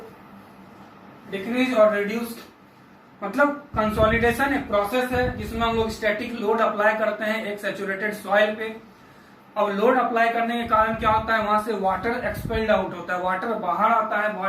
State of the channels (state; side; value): identical; both; correlation 1.00